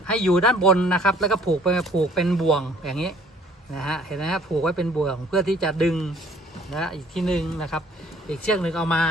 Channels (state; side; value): normal; both; correlation 0.57